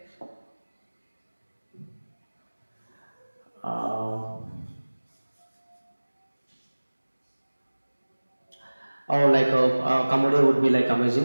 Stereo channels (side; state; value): both; inverted; correlation -1.00